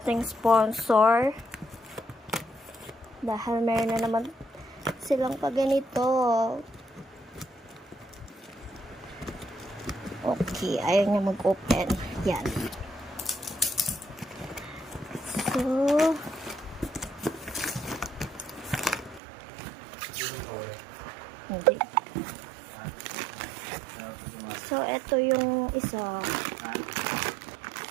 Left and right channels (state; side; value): drops out; left; at 19.2 s